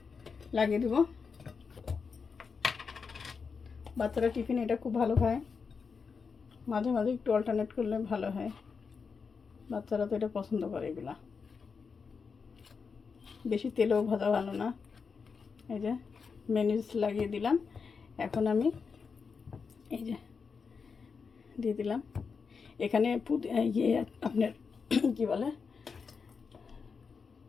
লাগিয়ে দেব। বাচ্চারা টিফিন এটা খুব ভালো খায়, মাঝে মাঝে একটু অল্টারনেট করলে ভালো হয়। বাচ্চারা তো এটা পছন্দ করে। এগুলা বেশি তেলেও ভাজা ভালো না। এই যে মেয়োনিজ লাগিয়ে দিলাম। এখন আমি এই যে দিয়ে দিলাম এখানে আপনার কি বলে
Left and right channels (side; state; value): right; quieter; 5.4 dB